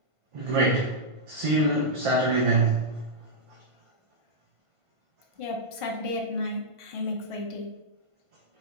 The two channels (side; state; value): left; late; 1.5 ms